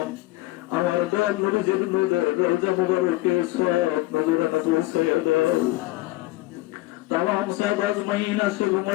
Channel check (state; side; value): quieter; right; 19.2 dB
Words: আমার দান নবীর নূরের রওজা মুবারকে সওয়াব নজরানা পৌঁছাইয়া দাও। তামাম সাহাবা আজমাইন আশিক